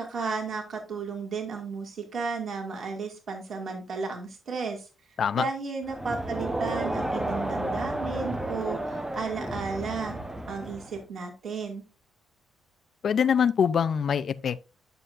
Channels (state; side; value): normal; both; correlation 0.76